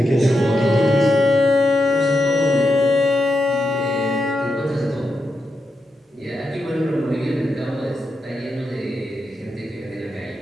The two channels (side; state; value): both; normal; correlation 0.86